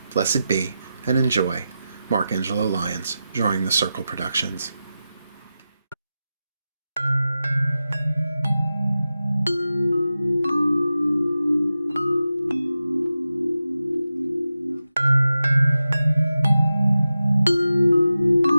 Blessed be, and enjoy. Mark Angelo Lyons, Drawing the Circle Productions.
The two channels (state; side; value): inverted; both; correlation -0.92